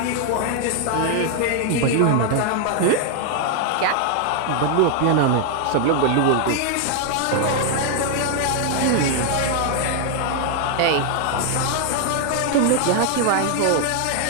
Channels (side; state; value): both; different; correlation 0.00